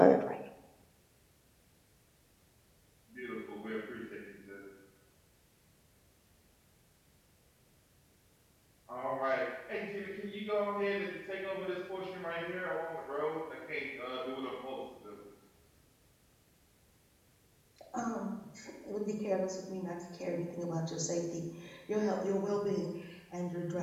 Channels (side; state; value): both; identical; correlation 1.00